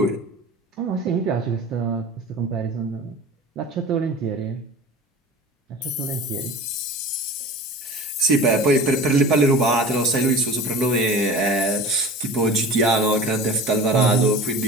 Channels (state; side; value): normal; both; correlation 0.37